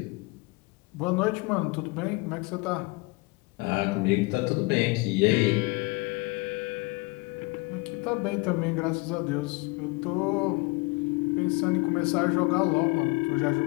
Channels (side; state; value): right; quieter; 25.5 dB